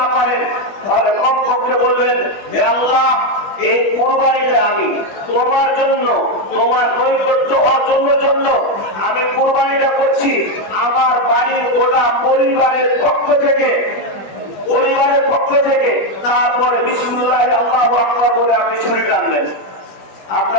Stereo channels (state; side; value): late; right; 20 ms